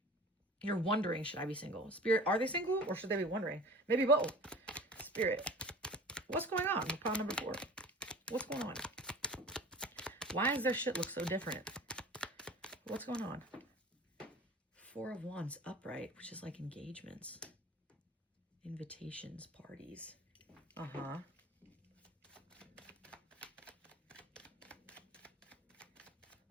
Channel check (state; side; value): normal; both; correlation 0.41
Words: You're wondering, should I be single? Spirit, are they single or should they be wondering? Maybe both. Spirit, what's going on with pile number 4? What's going on? Why does their shit look so different? What's going on? 4 of Wands upright, which is like engagements, invitations, parties. Uh-huh.